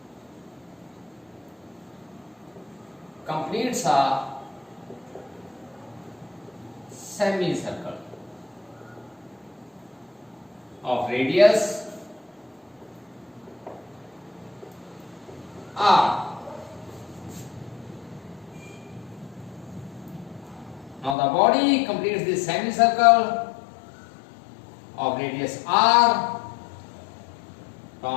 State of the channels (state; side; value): drops out; right; at 21.2 s